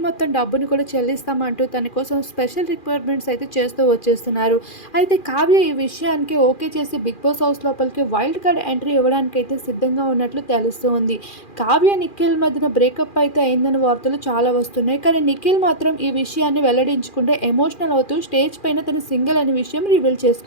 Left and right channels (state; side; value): late; right; 2.4 ms